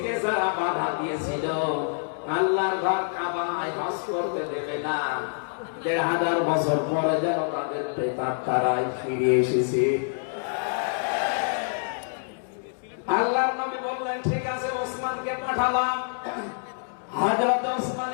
যারা বাধা দিয়েছিল আল্লাহর ঘর কাবায় হজ করতে দেবে না, 1500 বছর পরে যেন তাদের প্রেতাত্মারাই ফিরে এসেছে। আল্লাহর নবী বললেন, ঠিক আছে, ওসমানকে পাঠালাম। হযরত ওসমান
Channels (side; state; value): right; silent; digital silence